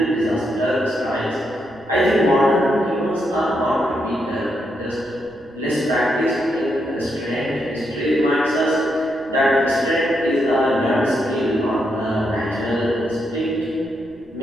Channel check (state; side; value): noise; right; rumble, 29 dB below the sound